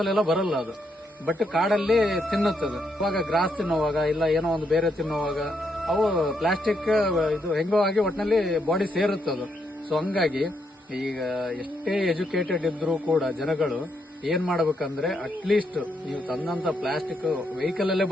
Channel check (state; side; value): normal; both; correlation 0.78